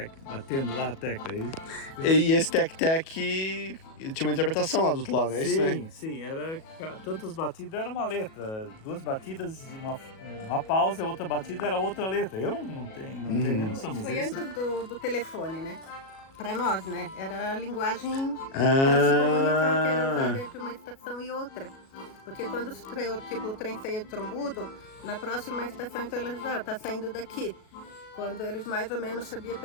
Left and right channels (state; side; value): late; right; 37 ms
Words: batendo lá a tecla. E esse tec-tec ele tinha uma interpretação lá do outro lado, é isso, né? Sim, era tantas batidas, era uma letra. 2 batidas, uma pausa, e outra batida era outra letra. Eu não tenho noção, mas Foi ele antes do telefone, né? Para nós, né? Era a linguagem para se comunicar, que era usada entre uma estação e outra. Porque quando o trem saía de Trombudo, na próxima estação, então eles tá saindo daqui. Quando eles mais ou menos sabiam